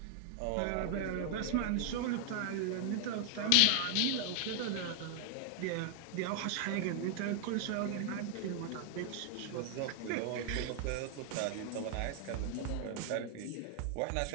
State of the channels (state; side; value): different; both; correlation 0.00